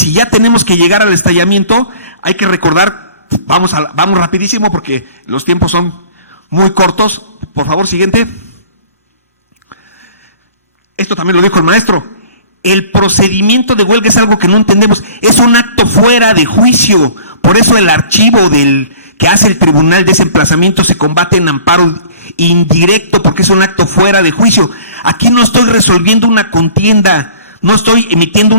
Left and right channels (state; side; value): inverted; both; correlation -0.48